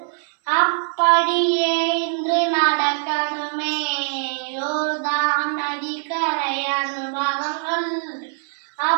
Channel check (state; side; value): silent; left; 62 dB below the other